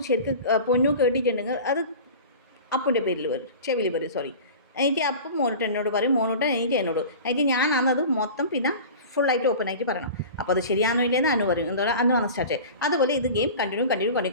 ശരിക്കും പൊന്നു കേട്ടിട്ടുണ്ടെങ്കിൽ അത് അപ്പുൻ്റെ പേരിൽ വരും, ചെവിയിൽ വരും, സോറി. എനിക്ക് അപ്പം മോനോട്ട് എന്നോട് പറയും, മോനോട്ട് എനിക്ക് എന്നോട്. എനിക്ക് ഞാനാണത് മൊത്തം പിന്നെ ഫുള്ളായിട്ട് ഓപ്പൺ ആയിട്ട് പറയണം. അപ്പോൾ അത് ശരിയാണോ ഇല്ലെന്ന് അനു പറയും. എന്താ പറയുക, അനു ആണ് സ്റ്റാർട്ട്. അതുപോലെ ഇത് ഗെയിം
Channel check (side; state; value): both; inverted; correlation -0.36